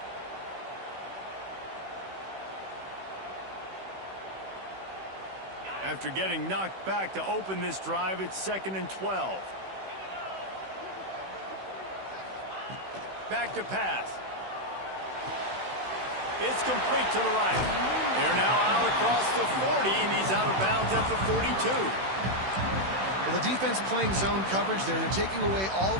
After getting knocked back to open this drive, it's 2nd and 12. Back to pass. It's complete to the right. They're now out across the 40, and he's out of bounds at the 42. Well, the defense playing zone coverage there. They're taking away all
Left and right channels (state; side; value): late; left; 16 ms